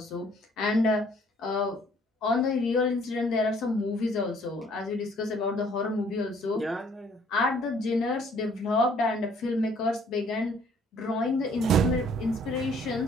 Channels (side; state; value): both; normal; correlation 0.60